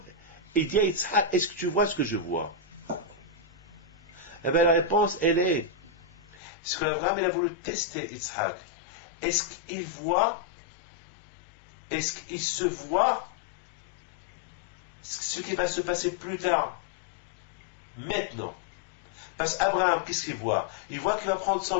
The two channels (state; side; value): drops out; right; at 6.4 s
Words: Il dit à Yitzhak, est-ce que tu vois ce que je vois? Eh bien la réponse, elle est, ce qu'Abraham il a voulu tester Yitzhak. Est-ce qu'il voit, est-ce qu'il se voit ce qui va se passer plus tard? Maintenant. Parce qu'Abraham, qu'est-ce qu'il voit? Il voit qu'il va prendre son